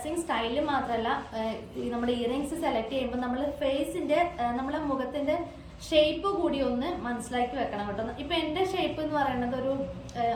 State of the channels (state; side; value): identical; both; correlation 1.00